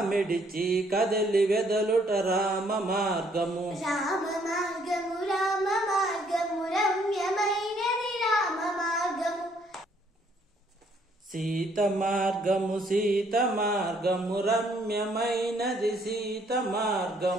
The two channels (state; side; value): normal; both; correlation 0.66